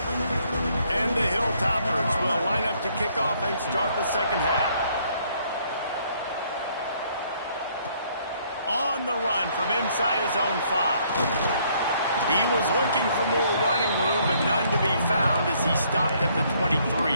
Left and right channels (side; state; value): both; inverted; correlation -0.66